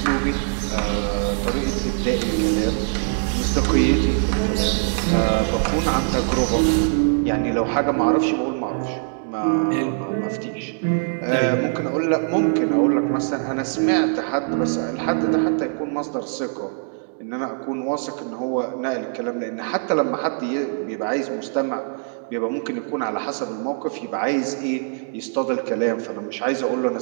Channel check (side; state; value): left; silent; digital silence